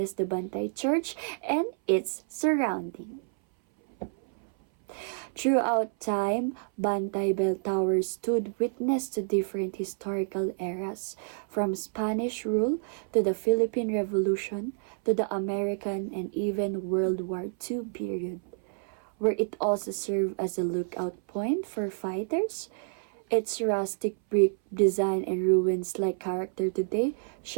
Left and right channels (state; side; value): silent; left; 59 dB below the other